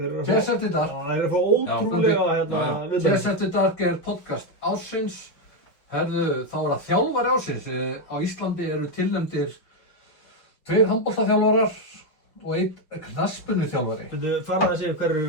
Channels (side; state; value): right; late; 5.7 ms